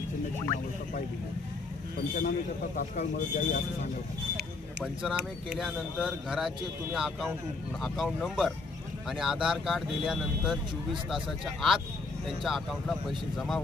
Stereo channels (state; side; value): quieter; right; 3.7 dB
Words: चिन्हाची अवस्था पाहिली आहे। पंचनामे करता तात्काळ मदत द्यावी असं सांगायचं। पंचनामे केल्यानंतर घराचे तुम्ही अकाउंट नंबर आणि आधार कार्ड दिल्यानंतर 24 तासाच्या आत त्यांच्या अकाउंटला पैसे जमा